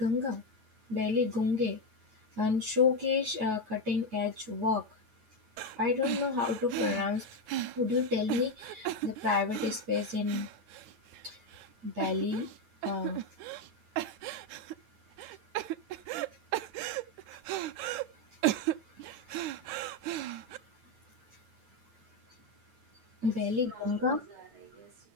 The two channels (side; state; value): left; late; 9.2 ms